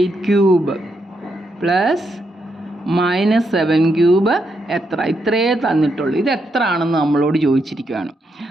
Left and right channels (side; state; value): both; normal; correlation 0.81